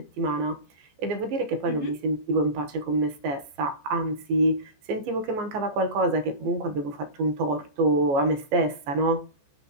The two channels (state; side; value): late; left; 14 ms